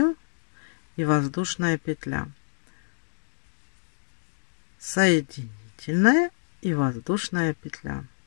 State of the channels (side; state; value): right; silent; digital silence